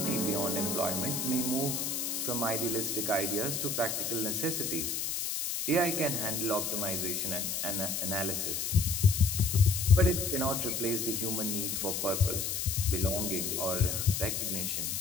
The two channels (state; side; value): noise; left; hiss, 1 dB below the sound